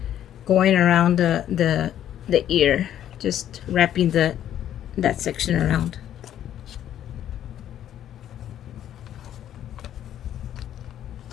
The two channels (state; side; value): quieter; right; 11.0 dB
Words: around the ear, just wrapping that section around.